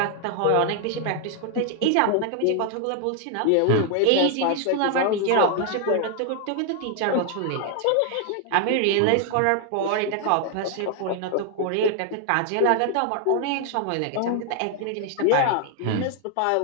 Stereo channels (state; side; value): different; both; correlation 0.00